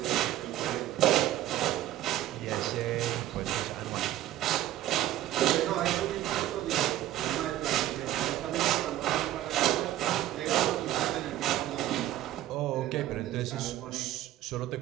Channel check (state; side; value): quieter; left; 13.8 dB